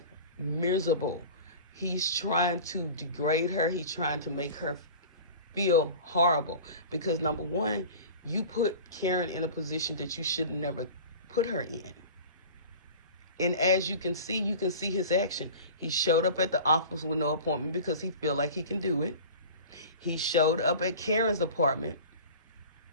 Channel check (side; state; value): both; inverted; correlation -0.38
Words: miserable. He's trying to degrade her. He's trying to make her feel horrible because, number one, you put Karen in a position that you should never put her in. And as you can see his action. He showed up at the office with no appointment because he feel like he can do it. He showed up at Karen's apartment